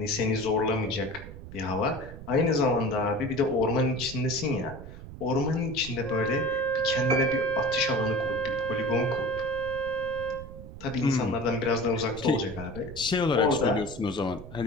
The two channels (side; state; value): right; noise; rumble, 13 dB below the sound